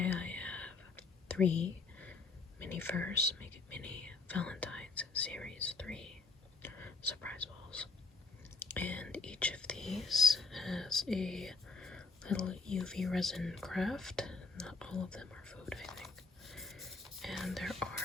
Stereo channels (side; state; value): right; quieter; 4.0 dB